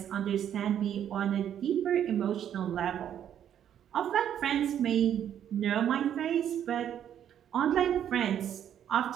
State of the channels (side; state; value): left; quieter; 9.8 dB